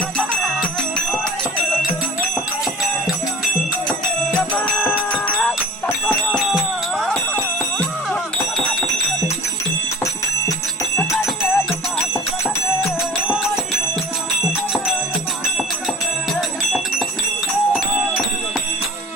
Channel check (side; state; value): both; normal; correlation 0.40